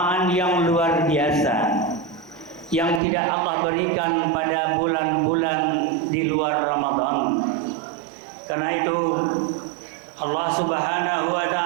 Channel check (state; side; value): drops out; left; at 3.0 s